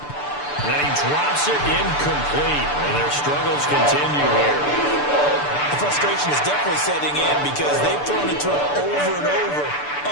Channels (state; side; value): late; right; 6.9 ms